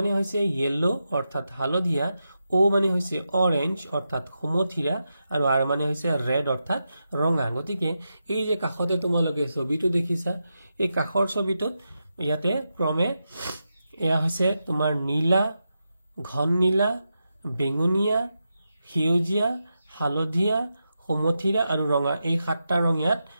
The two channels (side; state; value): both; inverted; correlation -0.88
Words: হৈছে য়েলো অৰ্থাৎ হালধীয়া ও মানে হৈছে অৰেঞ্জ অৰ্থাৎ সমথিৰা আৰু আৰ মানে হৈছে ৰেড অৰ্থাৎ ৰঙা গতিকে এই যে কাখতে তোমালোকে ছবিটো দেখিছা এই কাখৰ ছবিটোত ইয়াতে ক্ৰমে এয়া হৈছে তোমাৰ নীলা ঘন নীলা বেঙুনীয়া সেউজীয়া হালধীয়া সমথিৰা আৰু ৰঙা এই সাতটা ৰং ইয়াত